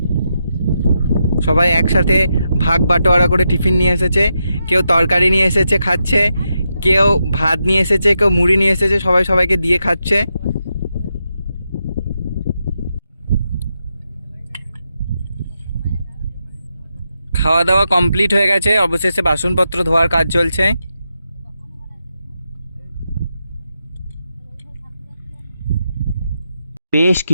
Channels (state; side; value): inverted; both; correlation -0.85